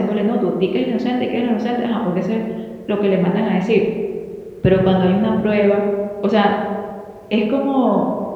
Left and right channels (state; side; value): identical; both; correlation 1.00